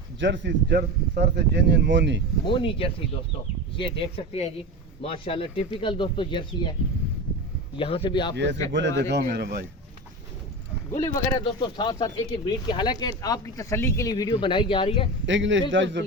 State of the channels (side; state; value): both; normal; correlation 0.25